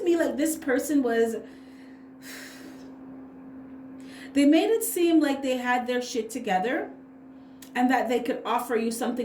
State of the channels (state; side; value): identical; both; correlation 1.00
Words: me like this person they made it seem like they had their shit together, and that they could offer you